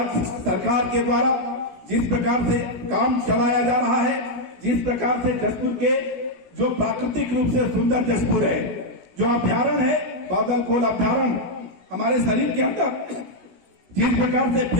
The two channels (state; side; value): late; left; 16 ms